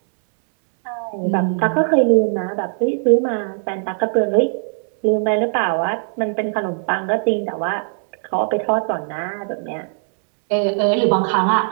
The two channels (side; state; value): left; silent; 65 dB below the other